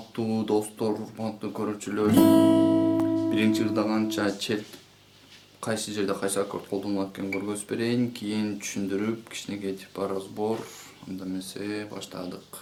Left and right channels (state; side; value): identical; both; correlation 1.00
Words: достор, урматтуу көрүүчүлөр. Биринчи ырда канча чет кайсы жерде кайсы аккорд колдонулат экенин көргөзүп берейин, кийин түшүндүрүп кичинекей типа разбор. Анда эмесе баштадык.